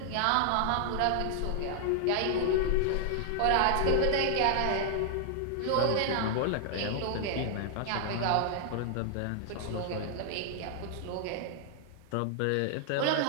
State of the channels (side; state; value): both; different; correlation 0.00